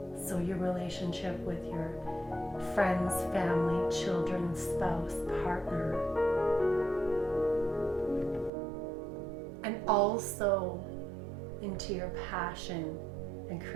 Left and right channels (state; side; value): drops out; left; at 8.5 s